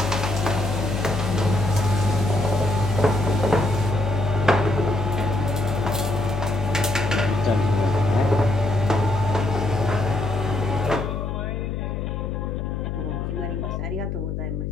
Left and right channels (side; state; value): left; noise; hum, 2 dB below the sound